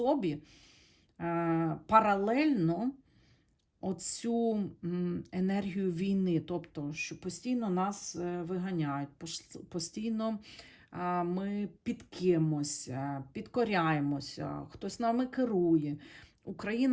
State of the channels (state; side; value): identical; both; correlation 1.00